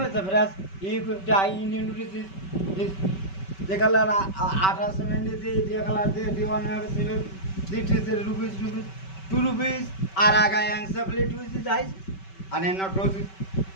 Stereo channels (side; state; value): right; late; 5.2 ms